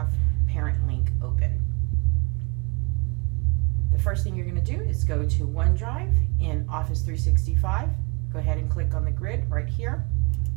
Parentlink open. The first thing you're going to do is go to OneDrive in Office 365. Go ahead and click on the grid right here,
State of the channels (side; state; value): left; quieter; 30.3 dB